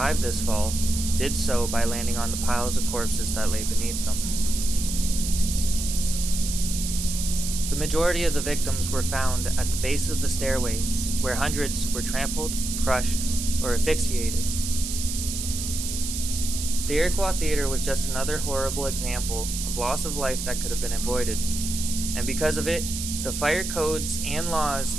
this fall did so by landing on the piles of corpses that lay beneath them. The majority of the victims were found at the base of the stairways, where hundreds were trampled, crushed, or asphyxiated. The Iroquois Theater was just another horrible example of loss of life that could have been avoided. And because of it, the fire codes and laws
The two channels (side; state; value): right; noise; hiss, 5 dB below the sound